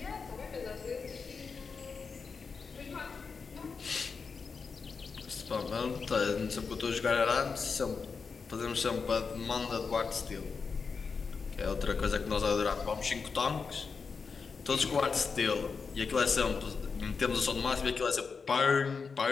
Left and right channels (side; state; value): right; quieter; 5.2 dB